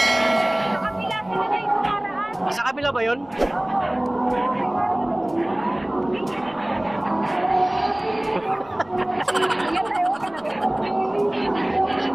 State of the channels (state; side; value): noise; left; rumble, 26 dB below the sound